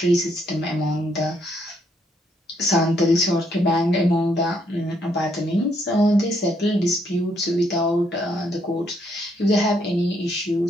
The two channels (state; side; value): normal; both; correlation 0.72